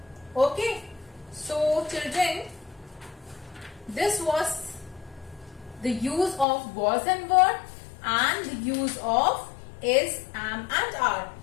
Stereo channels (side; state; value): right; drops out; at 6.5 s